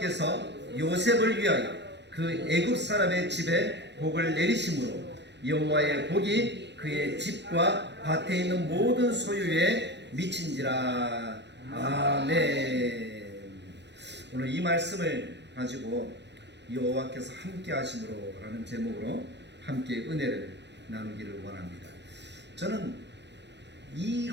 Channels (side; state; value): left; late; 0.51 ms